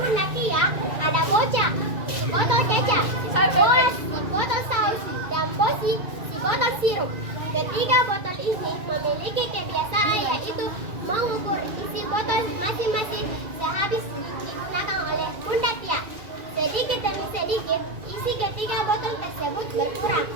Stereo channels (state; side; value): late; left; 2.3 ms